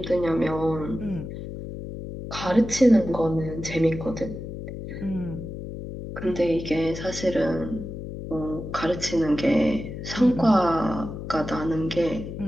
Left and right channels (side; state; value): left; noise; hum, 8 dB below the sound